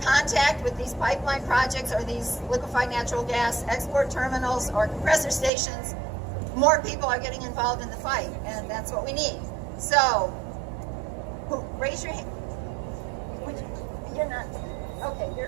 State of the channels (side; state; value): left; drops out; at 5.5 s